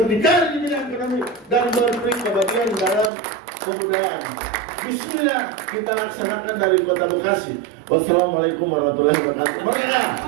di bidang ekonomi, dan berberi kebahagiaan dalam kebudayaan. Bismillah kita laksanakan dari Kota Bekasi. Wassalamualaikum warahmatullahi wabarakatuh. Merdeka!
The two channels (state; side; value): drops out; left; at 3.1 s